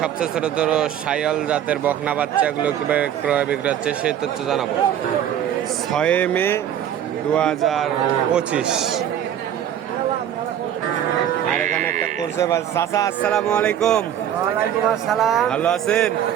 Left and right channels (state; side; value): quieter; left; 10.2 dB